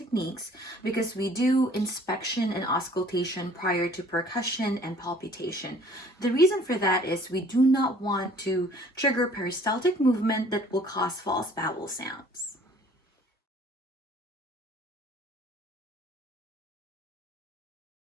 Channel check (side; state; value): both; normal; correlation 0.54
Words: because we do inspection and auscultation prior to percussion and palpitation. The reason for that is we do not want to trigger peristaltic movement that will cause false bowel sounds.